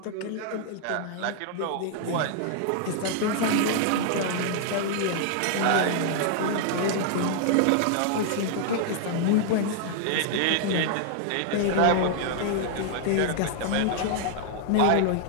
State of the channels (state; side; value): different; both; correlation -0.01